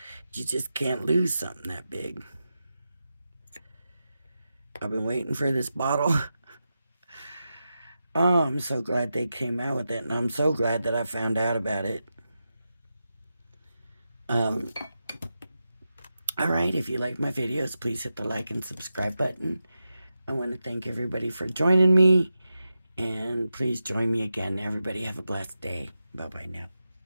You just can't lose something that big. I've been waiting for this bottle. Oh, I'm so glad they came out with it, and I'm so glad that I found out about it. Alright, if you like my videos, please hit the like and subscribe button. I want to thank everybody for joining me, and please join me again. Everybody have a blessed day. Bye-bye now.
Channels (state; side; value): inverted; both; correlation -0.90